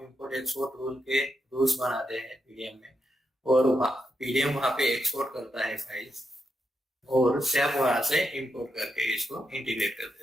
इंपोर्ट एक्सपोर्ट रूल के रूल्स बनाते हैं पीडीएम में, और पीडीएम वहां पे एक्सपोर्ट करता है फाइल्स, और SAP वहां से इंपोर्ट करके इसको इंटीग्रेट कर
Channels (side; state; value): both; normal; correlation 0.84